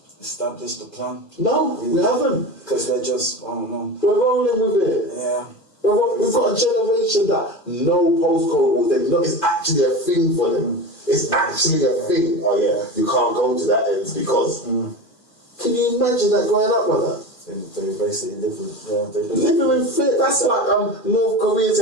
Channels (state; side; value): late; right; 2.4 ms